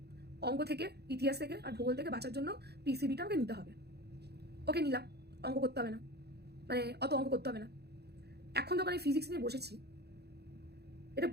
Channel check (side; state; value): left; late; 0.48 ms